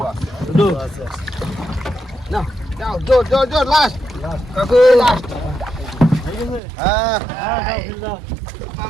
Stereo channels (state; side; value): drops out; left; at 6.6 s